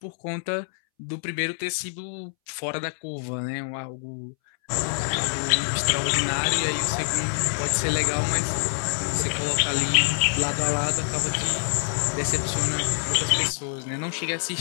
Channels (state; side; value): silent; right; 61 dB below the other